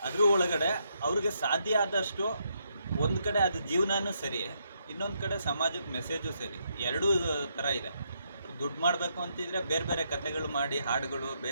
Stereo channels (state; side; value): inverted; both; correlation -0.77